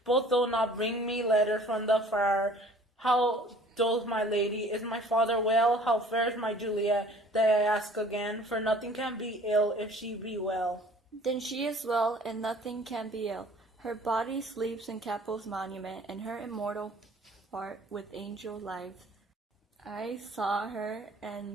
both though not bring me letter from the friar. How doth my lady? Is my father well? How fares my Juliet? That I ask again, for nothing can be ill if she be well. Then she is well, and nothing can be ill. Her body sleeps in Capel's monument, and her immortal part with angel lives. I saw her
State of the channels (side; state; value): both; normal; correlation 0.51